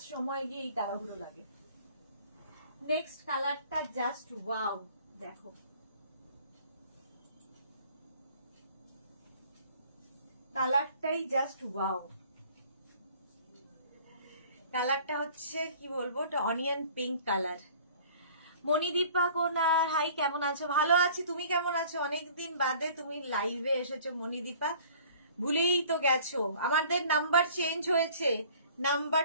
সময় গিয়ে এই তাড়াহুড়ো লাগে। নেক্সট কালারটা জাস্ট ওয়াও, দেখো কালারটাই জাস্ট ওয়াও। কালারটা হচ্ছে কি বলবো, অনিয়ন পিঙ্ক কালার। মণিদীপা কোনার, হাই কেমন আছো? ভালো আছি, তুমি কেমন আছো? অনেকদিন বাদে তুমি লাইভে এসেছো মণিদীপা, ভুলেই তো গেছো। আমাদের নাম্বার চেঞ্জ হয়েছে,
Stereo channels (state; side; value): inverted; both; correlation -0.51